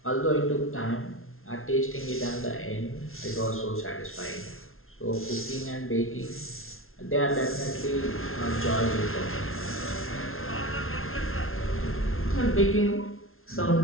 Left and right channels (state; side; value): late; right; 0.61 ms